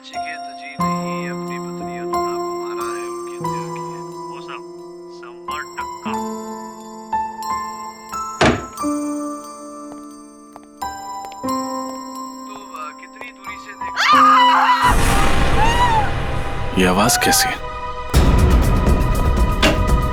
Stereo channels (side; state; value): both; identical; correlation 1.00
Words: ये आवाज कैसी है?